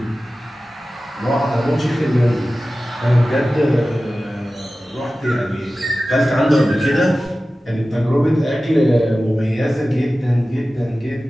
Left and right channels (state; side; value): normal; both; correlation 0.95